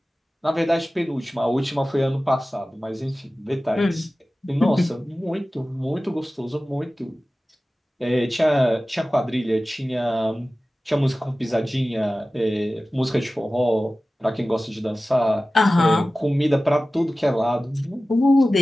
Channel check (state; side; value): normal; both; correlation 0.96